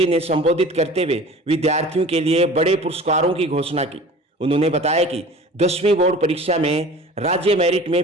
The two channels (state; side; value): normal; both; correlation 0.42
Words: ने संबोधित करते हुए विद्यार्थियों के लिए बड़े पुरस्कारों की घोषणा की। उन्होंने बताया कि 10वीं बोर्ड परीक्षा में राज्य मेरिट में